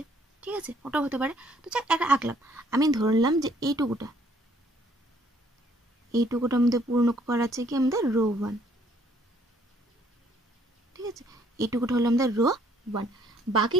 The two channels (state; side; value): normal; both; correlation 0.64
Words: ঠিক আছে, ওটাও হতে পারে। তো যাক একটা আঁকলাম, আমি ধরলাম যে এইটুকুটা আমাদের পূর্ণ করা আছে কি আমাদের রো ওয়ান। ঠিক আছে, এইটুকুটা হলো আমাদের রো ওয়ান,